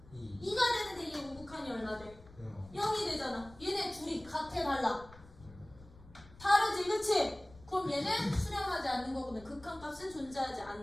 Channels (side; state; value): left; noise; rumble, 21 dB below the sound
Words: 2가 되는데 얘 우극한이 얼마 돼? 0이 되잖아. 얘네 둘이 같아 달라? 다르지 그치? 그럼 얘는 수렴하지 않는 거거든. 극한값은 존재하지